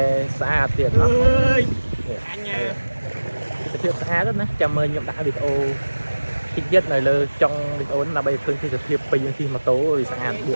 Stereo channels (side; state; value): both; inverted; correlation -1.00